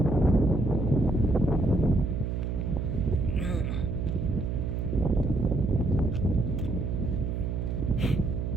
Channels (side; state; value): right; noise; hum, 2 dB below the sound